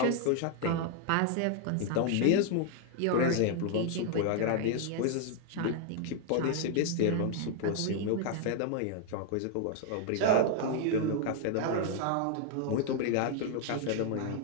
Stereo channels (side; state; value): both; different; correlation 0.00